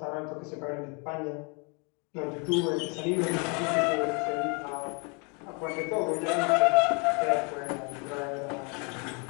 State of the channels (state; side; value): quieter; right; 33.6 dB